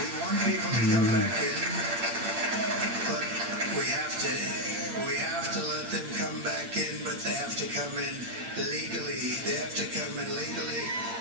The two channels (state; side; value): late; left; 8.7 ms